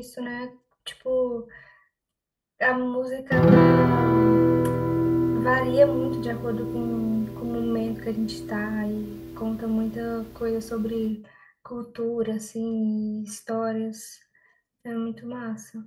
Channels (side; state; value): both; identical; correlation 1.00